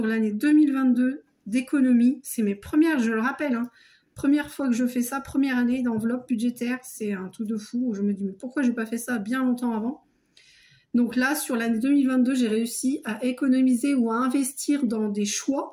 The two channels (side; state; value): both; identical; correlation 1.00